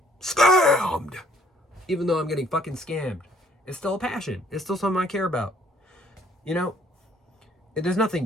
scammed. Even though I'm getting fucking scammed. It's still a passion. It's still something I care about. You know, there's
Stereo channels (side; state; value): both; normal; correlation 0.62